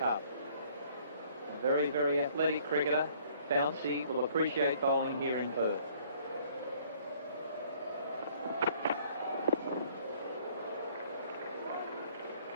A very, very athletic cricketer, bouncy, will appreciate bowling here in Perth.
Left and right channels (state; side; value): inverted; both; correlation -0.59